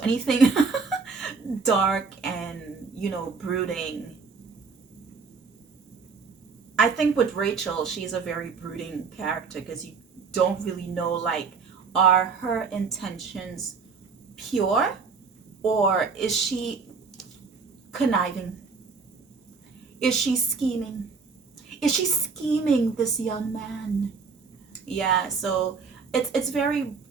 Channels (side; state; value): left; quieter; 5.0 dB